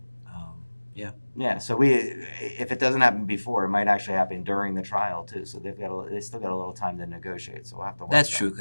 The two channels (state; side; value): inverted; both; correlation -1.00